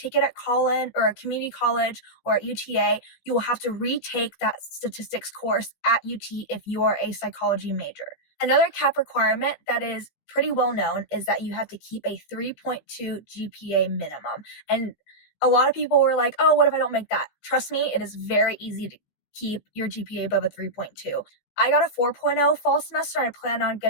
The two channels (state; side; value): late; right; 15 ms